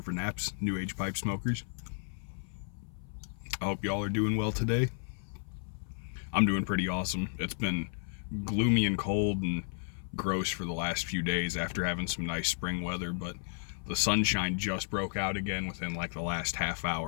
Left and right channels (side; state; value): right; silent; 56 dB below the other